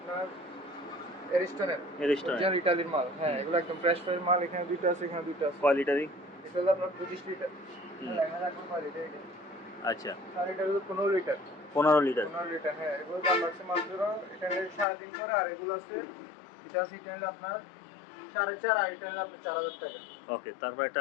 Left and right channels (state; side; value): drops out; right; at 14.9 s